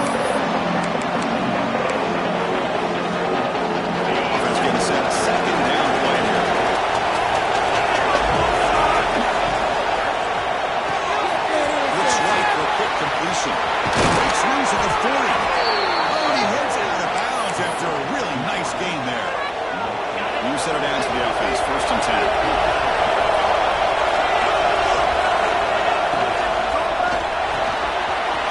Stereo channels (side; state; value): both; identical; correlation 1.00